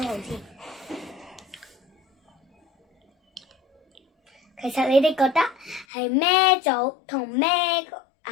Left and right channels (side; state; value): right; drops out; at 5.9 s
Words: 先。其實你哋覺得係咩組同咩